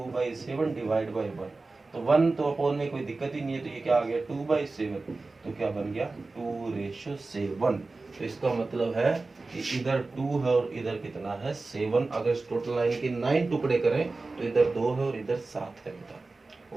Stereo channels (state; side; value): quieter; left; 3.6 dB